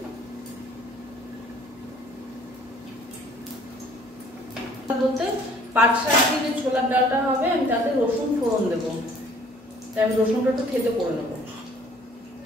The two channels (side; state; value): both; normal; correlation 0.56